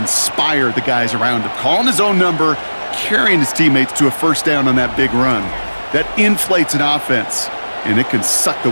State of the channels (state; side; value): inverted; both; correlation -1.00